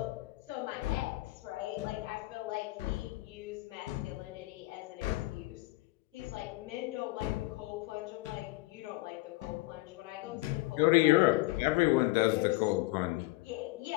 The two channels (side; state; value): right; quieter; 20.6 dB